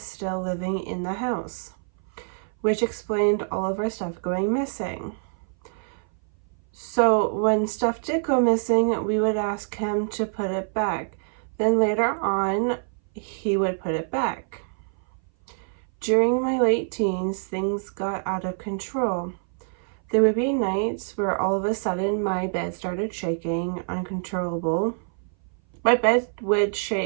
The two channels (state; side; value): silent; left; 59 dB below the other